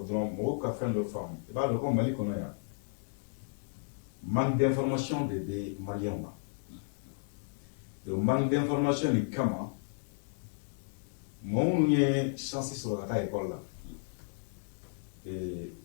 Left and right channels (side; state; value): right; silent; digital silence